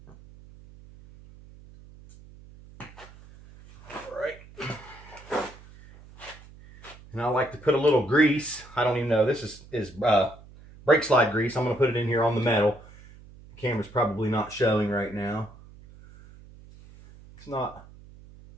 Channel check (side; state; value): right; noise; hum, 21 dB below the sound